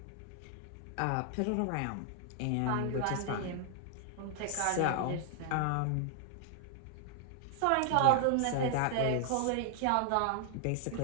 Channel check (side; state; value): both; different; correlation 0.00